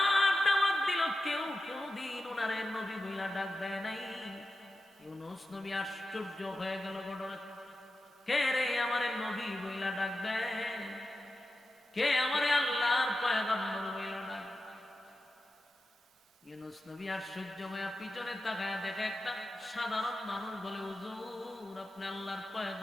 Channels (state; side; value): normal; both; correlation 0.92